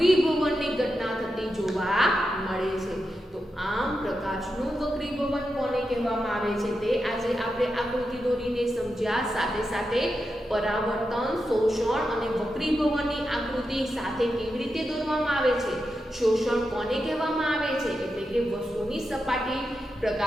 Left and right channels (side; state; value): both; normal; correlation 0.88